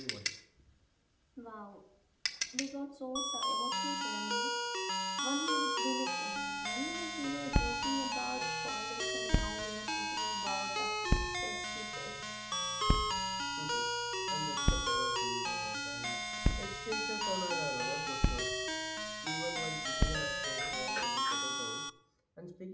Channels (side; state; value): both; identical; correlation 1.00